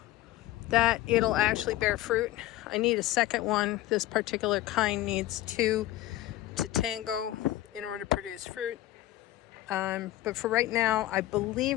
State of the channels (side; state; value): right; quieter; 15.5 dB